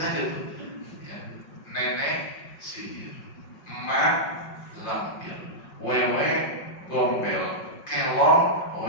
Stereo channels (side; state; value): right; late; 5.6 ms